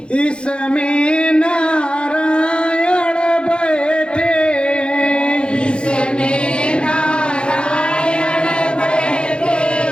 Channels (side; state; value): right; late; 0.055 ms